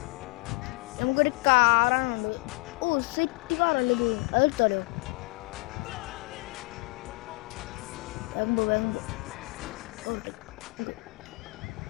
നമുക്കൊരു കാറാണുണ്ട്. സെറ്റ് കാറല്ലേ ഇത്, അതെടുത്താലോ?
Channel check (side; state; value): right; quieter; 28.1 dB